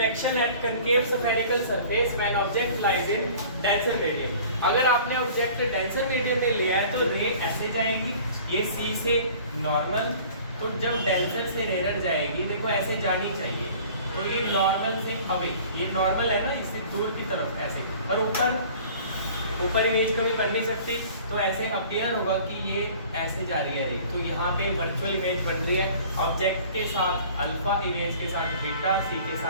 at concave spherical surface when object lies in denser medium. अगर आपने ऑब्जेक्ट डेंसर मीडियम में लिया है तो रे ऐसे जाएगी, ये सी से नॉर्मल, तो जब डेंसर से रेयर जाएगी देखो ऐसे जानी चाहिए, तो ये नॉर्मल से अवे, ये नॉर्मल है ना, इससे दूर की तरफ ऐसे, और ऊपर इमेज कभी बन नहीं सकती, तो ऐसे अपीयर होगा कि ये ऐसे जा रही है रे। तो यहाँ पे वर्चुअल इमेज बन रही है ऑब्जेक्ट के साथ अल्फा, इमेज के साथ बीटा, सी के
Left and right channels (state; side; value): inverted; both; correlation -0.47